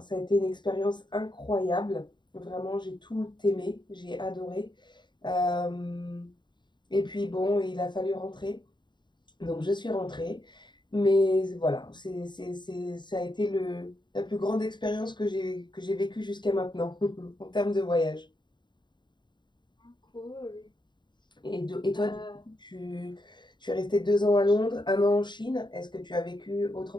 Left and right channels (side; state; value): right; late; 0.22 ms